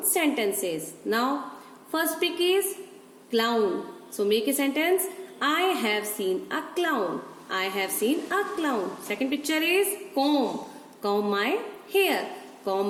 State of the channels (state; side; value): identical; both; correlation 1.00